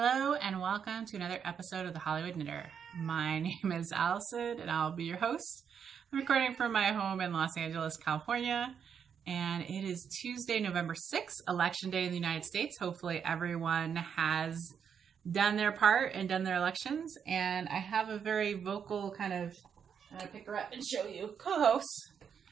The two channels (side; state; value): left; quieter; 7.4 dB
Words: and welcome to another episode of The Hollywood Knitter. My name is Allison and I'll be your host. I'm recording from my home in Los Angeles, California, and it is Tuesday, November 6th, Election Day in the United States. Hopefully everyone has done their part and done their elections, and I have a very vocal kind of, I'm going to pick her up and show you, co-host.